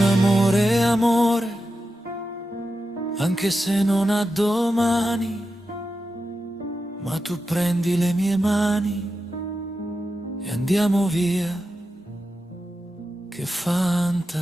Amore è amore, anche se non ha domani, ma tu prendi le mie mani e andiamo via, che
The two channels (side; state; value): both; normal; correlation 0.90